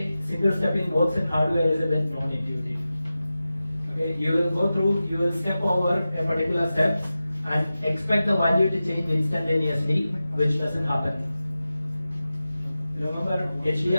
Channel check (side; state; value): both; inverted; correlation -0.94